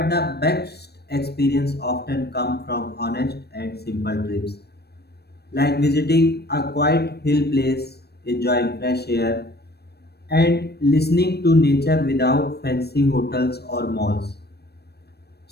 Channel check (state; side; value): late; right; 0.47 ms